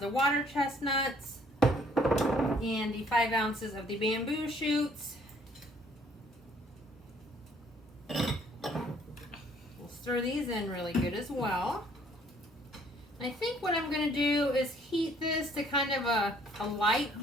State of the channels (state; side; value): normal; both; correlation 0.61